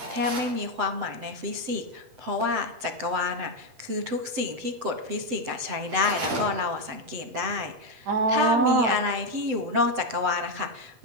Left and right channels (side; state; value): left; late; 7.9 ms